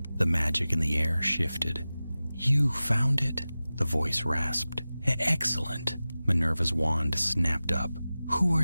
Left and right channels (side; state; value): both; inverted; correlation -0.96